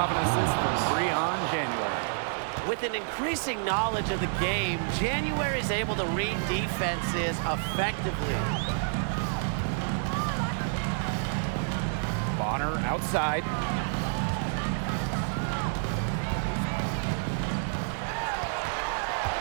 an assist from Breon January. With an increasing knowledge of the game, January is able to read defenses effectively. Bonner outside.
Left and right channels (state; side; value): silent; left; digital silence